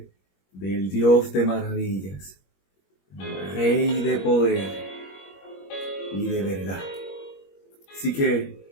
del Dios de maravillas, Rey de poder y de verdad. Así que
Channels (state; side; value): late; right; 21 ms